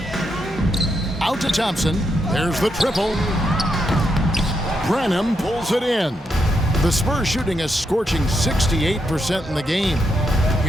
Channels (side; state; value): both; normal; correlation 0.81